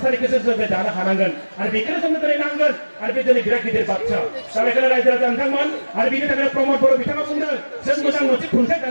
जों दानो हानांगोन आरो बेखौनो जोंनो दिनै नांगोन आरो बे दिनै बिराद गिदिर बाथ्रा दा बेखायनो रायजो राजा नोंथांमोन आरो बिनि थाखायनो प्रमद बर' बिथाङा बुंदों जों मोजां मोनसे खुंथाय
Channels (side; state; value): both; inverted; correlation -1.00